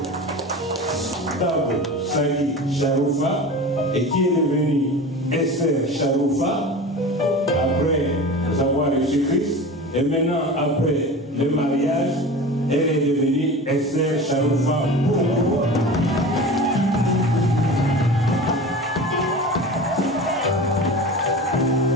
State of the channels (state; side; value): normal; both; correlation 0.33